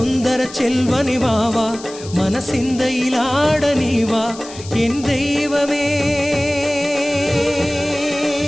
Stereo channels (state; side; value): noise; left; hiss, 16 dB below the sound